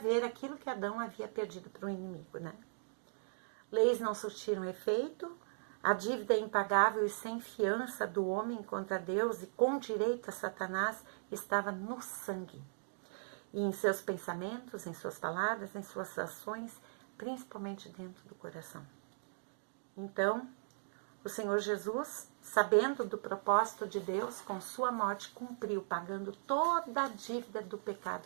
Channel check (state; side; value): silent; left; digital silence